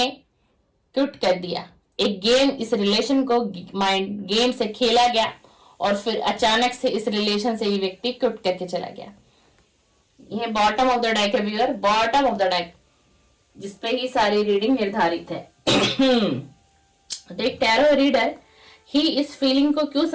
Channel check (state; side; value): identical; both; correlation 1.00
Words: क्विट कर दिया। एक गेम, इस रिलेशन को माइंड गेम से खेला गया और फिर अचानक से इस रिलेशन से ये व्यक्ति क्विट करके चला गया। ये बॉटम ऑफ द डेक है viewer, bottom of the deck, जिसपे ही सारी रीडिंग निर्धारित है। तो एक टैरो रीडर ही इस फीलिंग को क्यों